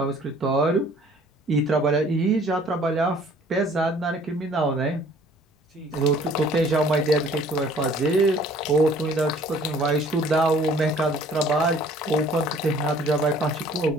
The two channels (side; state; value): both; normal; correlation 0.55